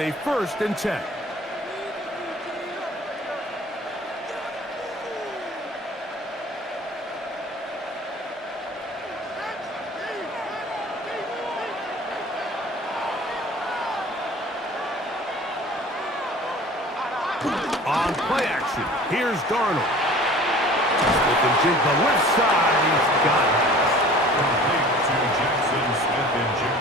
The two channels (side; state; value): both; normal; correlation 0.46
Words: 1st and 10. On play action, here's Darnold. Smith and Jigba left side, he's got it. Complete to Jackson, Smith and